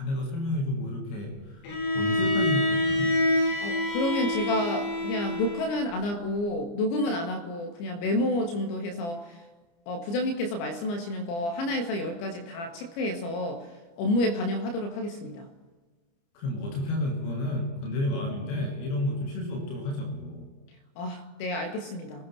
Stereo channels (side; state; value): right; late; 29 ms